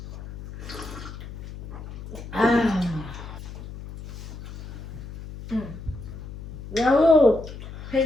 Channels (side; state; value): left; noise; hum, 12 dB below the sound